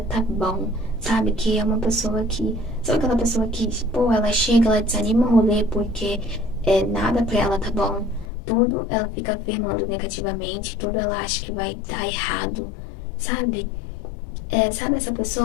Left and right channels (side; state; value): right; drops out; at 8.2 s